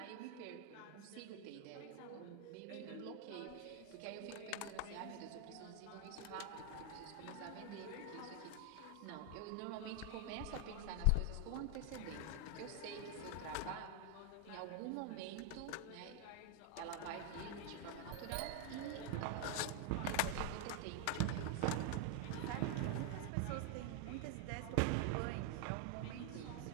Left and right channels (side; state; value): both; different; correlation 0.00